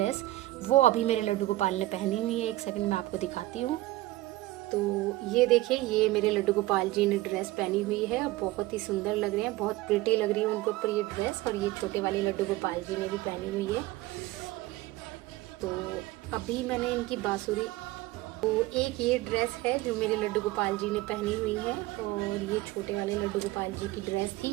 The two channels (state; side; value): quieter; left; 18.0 dB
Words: वो अभी मेरे लड्डू गोपाल ने पहनी हुई है। एक सेकंड में आपको दिखाती हूँ। तो ये देखिए, ये मेरे लड्डू गोपाल जी ने ड्रेस पहनी हुई है, बहुत ही सुंदर लग रहे हैं, बहुत प्रिटी लग रही है उनके ऊपर ये ड्रेस। और ये छोटे वाले लड्डू गोपाल जी ने भी पहनी हुई है। तो अभी मैंने इनकी बांसुरी, तो एक ये ड्रेस है जो मेरे लड्डू गोपाल जी ने पहनी हुई है, और ये छोटे वाले लड्डू गोपाल जी की ड्रेस थी।